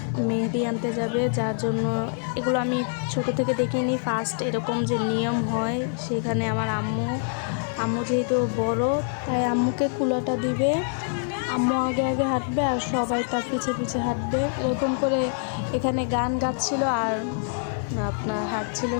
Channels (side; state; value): right; silent; 56 dB below the other